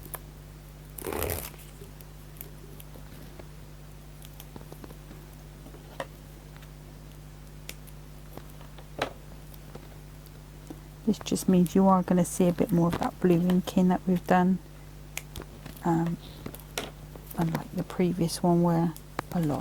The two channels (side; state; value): both; identical; correlation 1.00